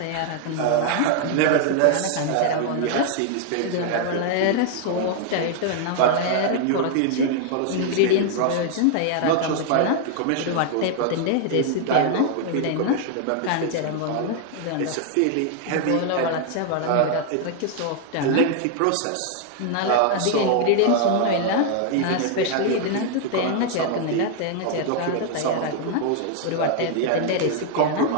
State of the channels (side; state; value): both; different; correlation 0.00